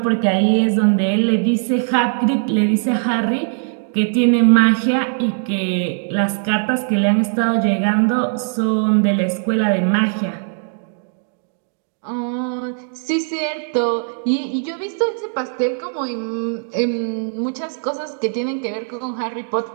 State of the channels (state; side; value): silent; left; digital silence